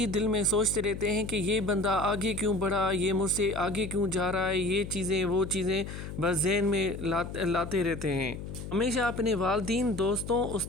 دل میں سوچتے رہتے ہیں کہ یہ بندہ آگے کیوں بڑھا، یہ مجھ سے آگے کیوں جا رہا ہے، یہ چیزیں وہ چیزیں بس ذہن میں لاتے رہتے ہیں۔ ہمیشہ اپنے والدین، دوستوں،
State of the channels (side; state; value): left; noise; hum, 9 dB below the sound